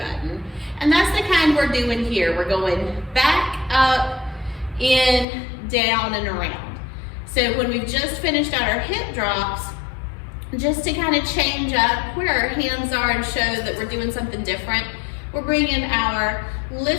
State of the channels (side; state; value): right; drops out; at 5.2 s